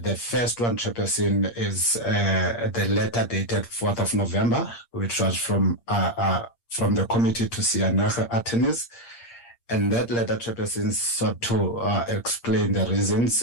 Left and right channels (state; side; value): late; right; 8.6 ms